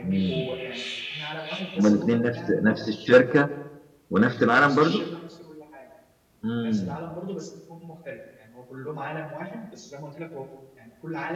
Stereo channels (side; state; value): both; identical; correlation 1.00